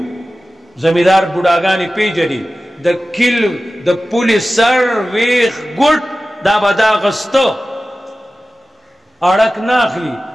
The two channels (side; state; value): both; normal; correlation 0.95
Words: زمیدار بڑاگانی پی جدی دا کل دا پولی سر ویخ گوٹ دا با دا غستو اڑک ناخلی